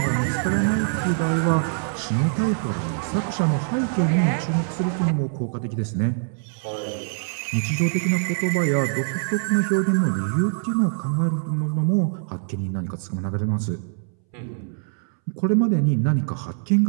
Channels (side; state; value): left; silent; 63 dB below the other